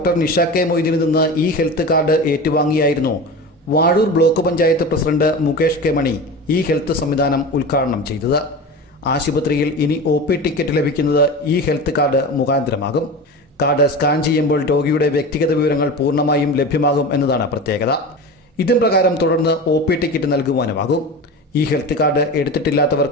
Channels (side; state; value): both; normal; correlation 0.29